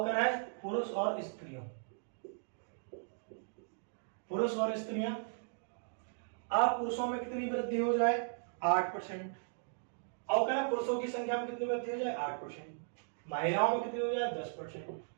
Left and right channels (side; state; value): left; silent; digital silence